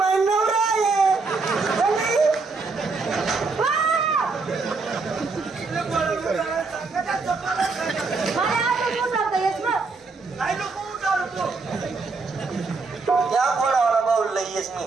आहे त्या घोडावाला बाऊल येस मी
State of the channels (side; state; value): left; quieter; 4.2 dB